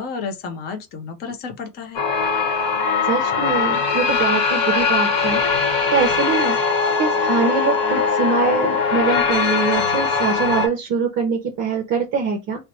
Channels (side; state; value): both; normal; correlation 0.06